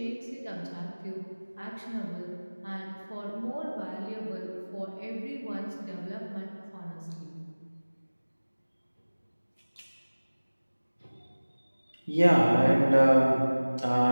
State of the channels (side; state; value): both; inverted; correlation -1.00